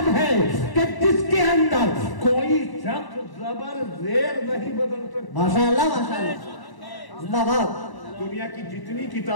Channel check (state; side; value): late; right; 1.0 ms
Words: ہے کہ جس کے اندر کوئی شخص زبر زیر نہیں بدل سکتا۔ ماشاءاللہ ماشاءاللہ، زندہ باد۔ دنیا کی جتنی